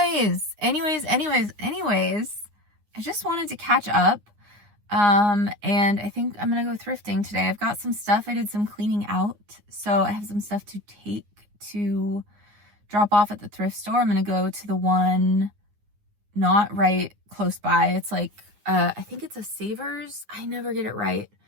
I just wanted to catch up. And I think I'm gonna go thrifting today. I've got some stuff. I did some cleaning out, so I have some stuff to take to drop off at the thrift store. I'm gonna go to the one not right close by. It's like, I think it's a Savers. I never get it right.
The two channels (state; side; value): late; left; 9.7 ms